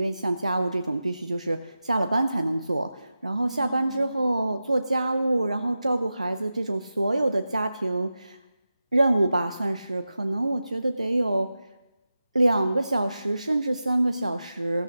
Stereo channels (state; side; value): inverted; both; correlation -0.92